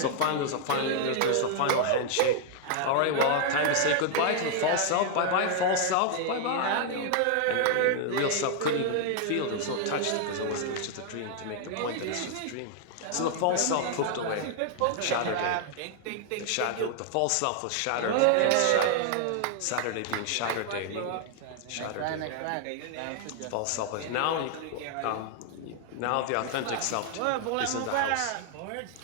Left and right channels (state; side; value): different; both; correlation 0.00